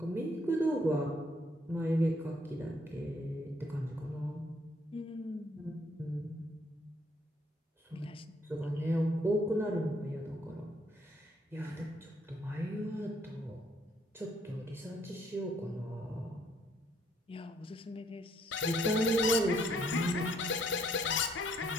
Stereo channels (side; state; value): both; normal; correlation 0.68